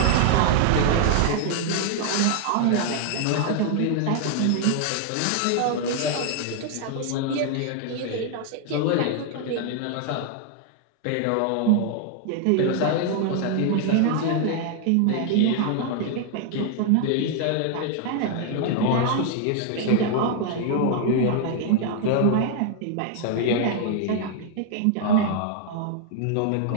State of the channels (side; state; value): both; different; correlation 0.00